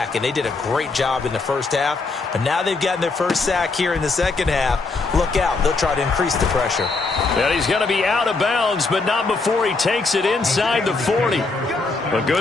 And they did a great job in the first half. But now they've gotten their first sack here in the second half. Look out. They'll try to increase the pressure. And he's going to be out of bounds, but not before he takes it inside the 40. A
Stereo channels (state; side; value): quieter; right; 3.8 dB